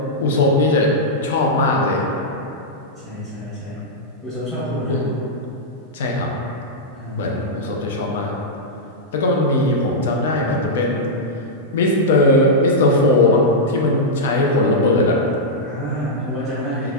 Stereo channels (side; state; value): both; normal; correlation -0.08